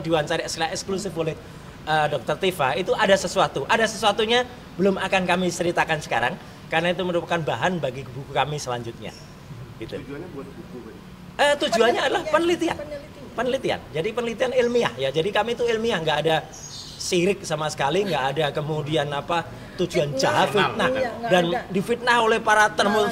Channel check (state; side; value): identical; both; correlation 1.00